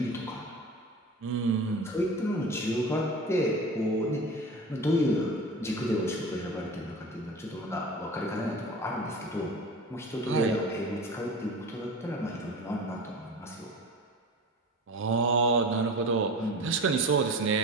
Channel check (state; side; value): normal; both; correlation 0.34